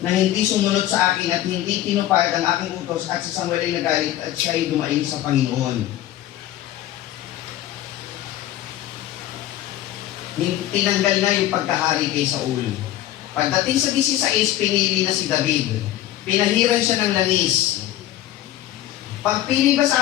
na hindi sumunod sa akin at hindi tinupad ang aking utos at si Samuel ay nagalit at siya'y dumaing sa Panginoon. Tinanggal na yung pagkahari kay Saul. Pagdating sa 16, pinili na si David. Pinahiran siya ng langis. Pagpili ba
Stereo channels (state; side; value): quieter; right; 13.6 dB